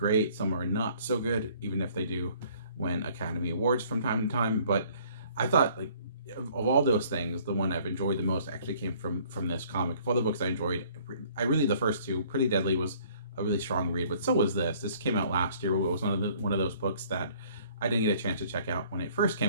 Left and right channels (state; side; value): inverted; both; correlation -0.58